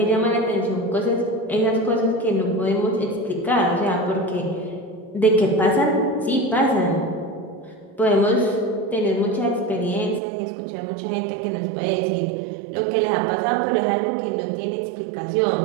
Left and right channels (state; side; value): drops out; left; at 10.2 s